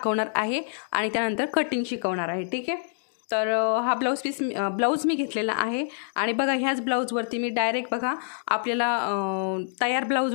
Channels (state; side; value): silent; right; digital silence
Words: आहे आणि त्यानंतर कटिंग शिकवणार आहे। ठीक आहे, तर हा ब्लाऊज मी घेतलेला आहे आणि बघा, ह्याच ब्लाऊजवरती मी डायरेक्ट बघा आपल्याला तयार